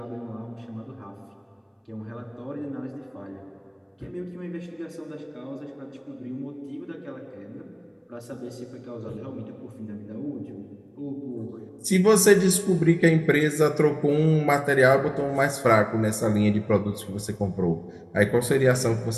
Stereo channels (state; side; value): identical; both; correlation 1.00